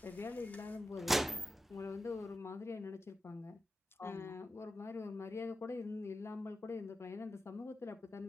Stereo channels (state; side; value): normal; both; correlation 0.90